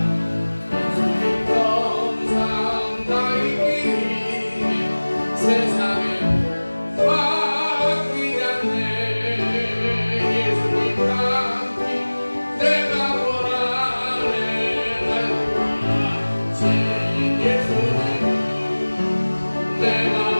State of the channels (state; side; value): inverted; both; correlation -1.00